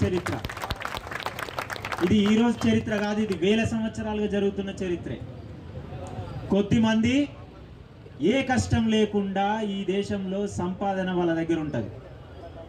చరిత్ర. ఇది ఈరోజు చరిత్ర కాదు, ఇది వేల సంవత్సరాలుగా జరుగుతున్న చరిత్రే. కొద్దిమంది ఏ కష్టం లేకుండా ఈ దేశంలో సంపాదన వాళ్ళ దగ్గర ఉంటుంది.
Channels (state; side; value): identical; both; correlation 1.00